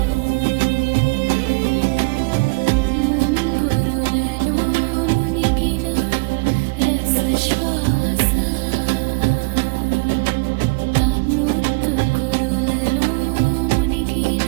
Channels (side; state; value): left; quieter; 29.6 dB